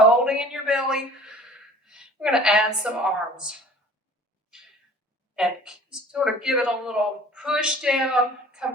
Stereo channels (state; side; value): normal; both; correlation 0.47